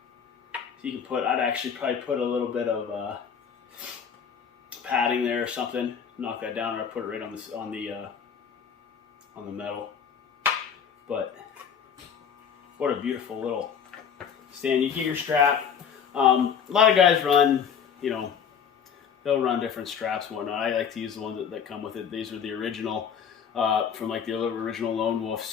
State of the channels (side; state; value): right; quieter; 7.3 dB